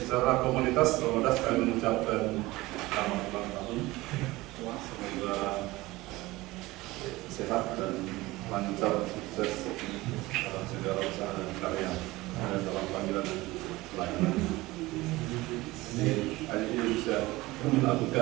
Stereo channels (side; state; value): left; quieter; 19.8 dB